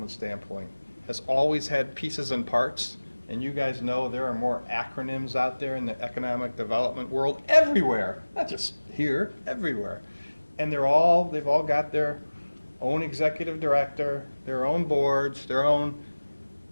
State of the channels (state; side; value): inverted; both; correlation -1.00